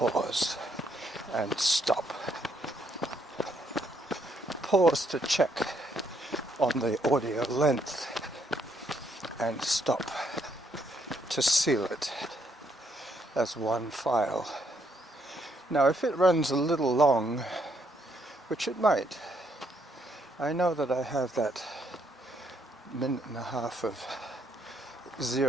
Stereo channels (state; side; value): normal; both; correlation 0.73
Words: and stop. Pause to check on the audio length and stop to seal it as one file. Now if it runs a little long, which it might, I know that I have that minute and a half of